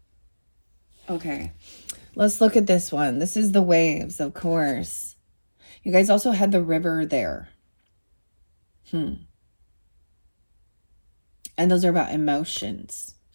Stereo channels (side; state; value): both; inverted; correlation -1.00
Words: Okay, let's look at this one. This is the waves, of course. You guys also had the river there. And those are about emotions.